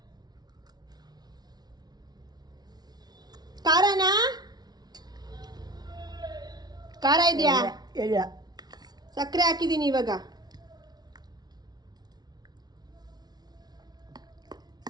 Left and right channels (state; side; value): late; left; 0.19 ms